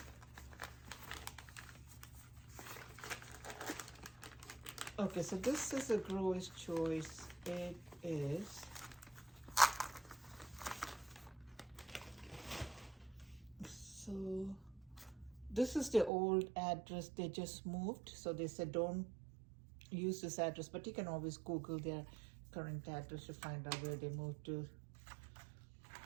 Okay, so this is a grower's choice. It is so this is the old address. They just moved, so they said don't use this address, but you can always Google their current address to find out where they moved to.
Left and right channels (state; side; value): drops out; left; at 16.1 s